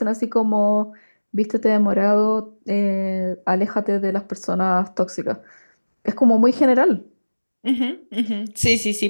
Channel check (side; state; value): both; inverted; correlation -1.00